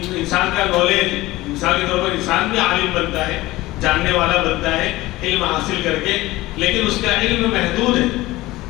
کا نالج, مثال کے طور پر انسان بھی عالم بنتا ہے, جاننے والا بنتا ہے علم حاصل کر کے, لیکن اس کا علم محدود ہے,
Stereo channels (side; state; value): right; quieter; 18.5 dB